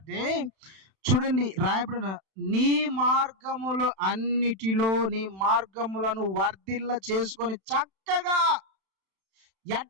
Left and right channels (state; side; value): late; left; 31 ms